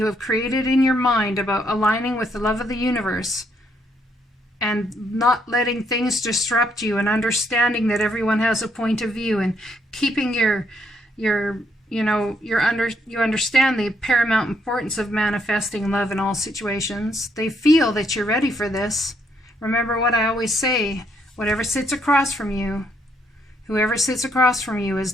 have created in your mind about aligning with the love of the universe and not letting things disrupt you and understanding that everyone has a point of view and keeping you understand the paramount importance of manifesting love in all situations. They feel that you're ready for this. Remember what I always say, whoever sits across from you is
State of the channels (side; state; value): both; normal; correlation 0.73